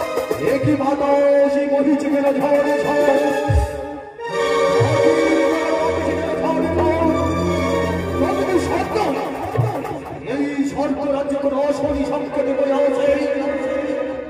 একই বাতাসে বহিছে কেন ঝড়ে ঝড় সত্য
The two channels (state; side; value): identical; both; correlation 1.00